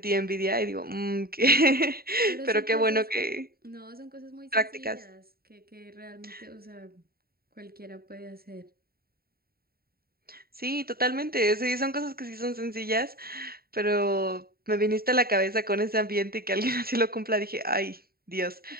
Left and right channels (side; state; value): left; late; 0.44 ms